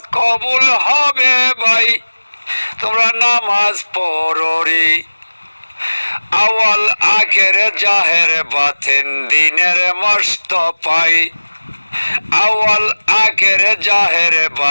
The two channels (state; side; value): inverted; both; correlation -1.00